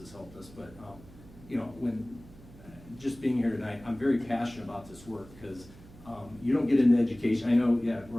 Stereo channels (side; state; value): right; noise; hum, 21 dB below the sound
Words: helped us. But when just being here tonight, I'm very passionate about this work because you don't get into education. I know, yeah,